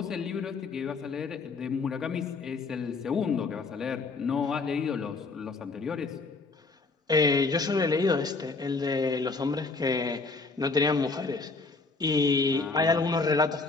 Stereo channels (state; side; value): quieter; right; 3.9 dB